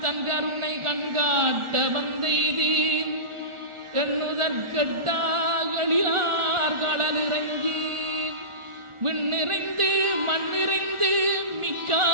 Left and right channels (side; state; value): left; late; 1.4 ms